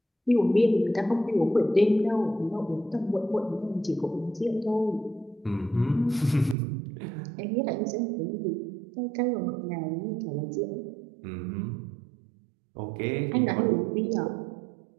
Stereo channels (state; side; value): drops out; left; at 6.6 s